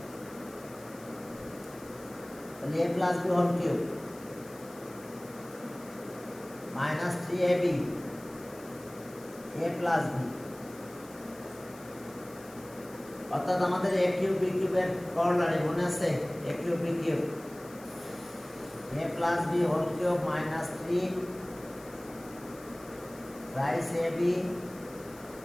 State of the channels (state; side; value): noise; left; hiss, 21 dB below the sound